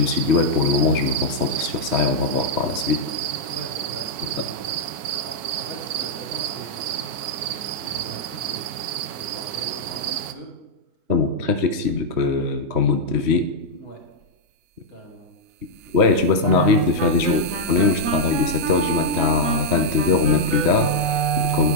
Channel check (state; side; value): late; left; 4.5 ms